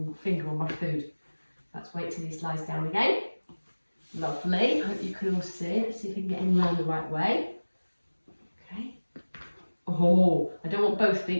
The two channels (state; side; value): inverted; both; correlation -1.00